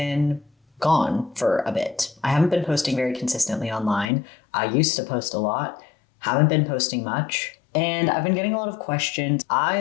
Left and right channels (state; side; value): drops out; right; at 4.1 s